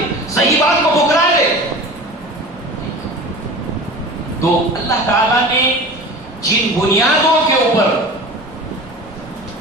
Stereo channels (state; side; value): normal; both; correlation 0.36